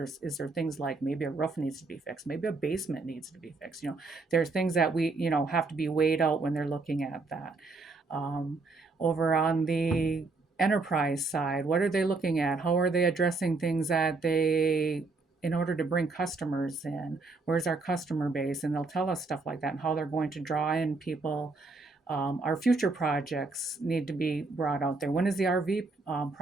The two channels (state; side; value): quieter; left; 3.7 dB